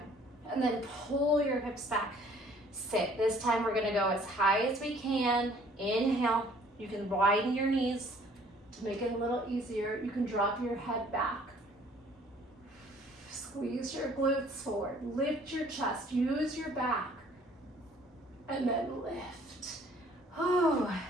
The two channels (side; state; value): both; normal; correlation 0.57